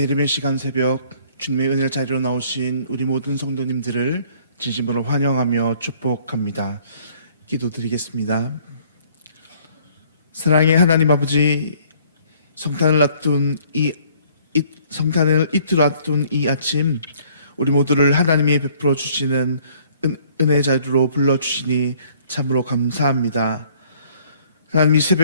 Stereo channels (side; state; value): both; inverted; correlation -0.59